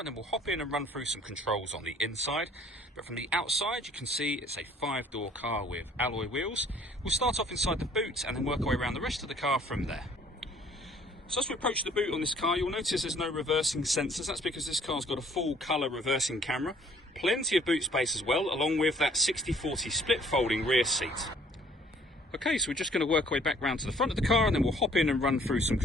then we'll hop in and run through some controls on the inside. But from the outside you can see it's a 5-door car with alloy wheels. We'll start off inside the boot and then work our way around the rest of the car from there. So as we approach the boot on this car, you'll notice there's no reversing sensors. That's because this car's got a full colour reversing camera. Plenty of boot space as well, along with that 60/40 split folding rear seat. Okay, so we're just going to work our way back round to the front of the car, and then we'll hop in and run through some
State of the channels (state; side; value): normal; both; correlation 0.58